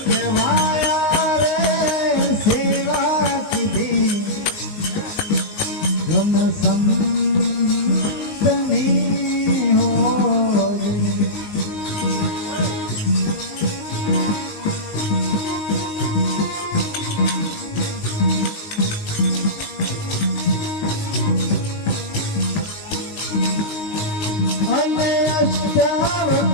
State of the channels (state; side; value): late; right; 19 ms